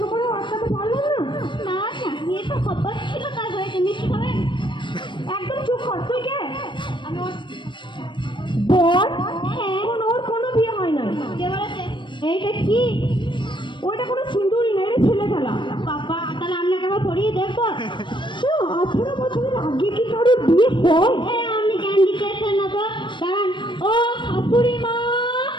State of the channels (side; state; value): right; late; 0.23 ms